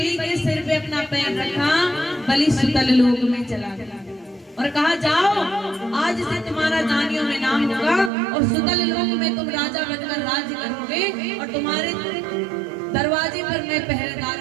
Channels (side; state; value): left; drops out; at 8.1 s